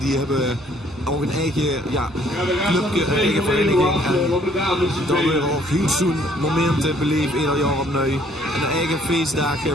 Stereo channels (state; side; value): normal; both; correlation 0.62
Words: hebben ook een eigen clubje, een eigen vereniging. En dan weer ook heel zo'n momenten beleven ieder jaar opnieuw. En een eigen feestdag